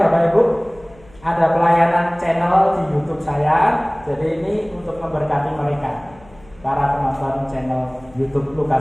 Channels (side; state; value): left; noise; hum, 26 dB below the sound